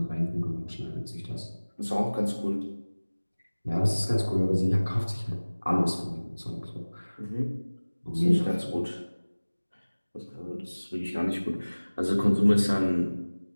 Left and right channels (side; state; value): both; inverted; correlation -1.00